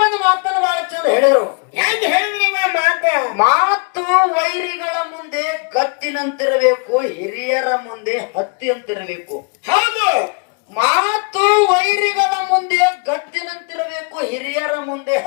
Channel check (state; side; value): quieter; right; 33.8 dB